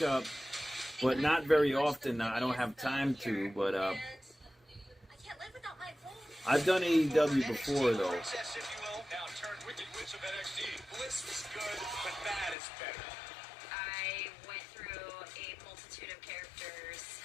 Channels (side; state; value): right; drops out; at 12.6 s